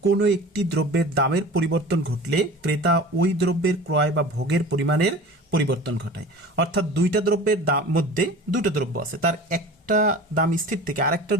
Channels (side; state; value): both; normal; correlation 0.38